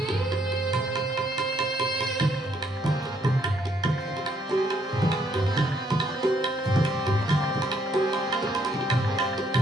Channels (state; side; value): normal; both; correlation 0.70